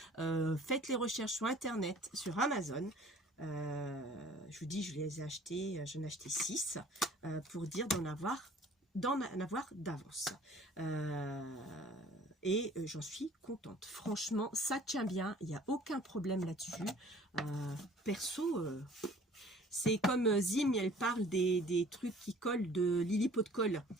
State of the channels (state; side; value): normal; both; correlation 0.51